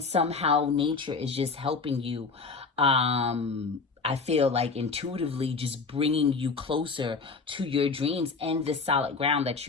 somehow nature is just helping you, I feel like intuitively just bringing you closer to your dreams and the solid ground that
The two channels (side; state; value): right; quieter; 4.5 dB